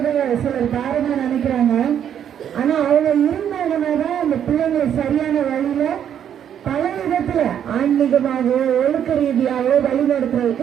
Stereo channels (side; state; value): left; quieter; 9.3 dB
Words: சிலர் பாரமா நினைக்கிறாங்க. ஆனா அவங்க இருந்தாங்கன்னாதான் அந்த பிள்ளைங்களை சரியான வழியில பல விதத்துல ஆன்மீகமாகவோ ஒழுக்க ரீதியாகவோ